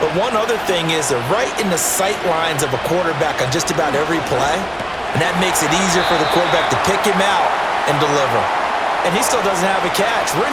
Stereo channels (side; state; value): right; noise; rumble, 26 dB below the sound